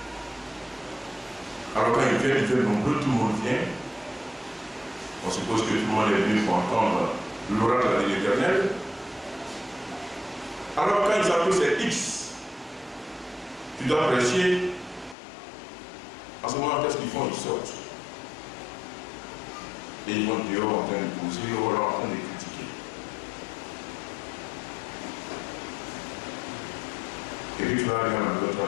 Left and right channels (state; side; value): drops out; right; at 15.2 s